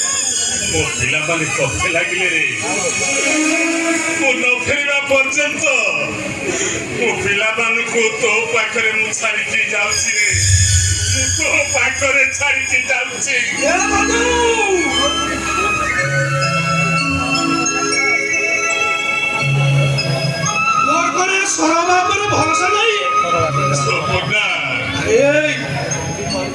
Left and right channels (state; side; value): identical; both; correlation 1.00